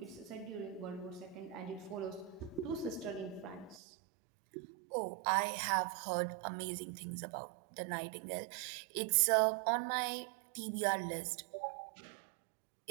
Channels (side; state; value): left; drops out; at 3.8 s